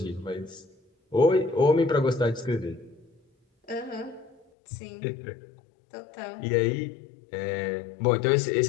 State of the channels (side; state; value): right; drops out; at 4.5 s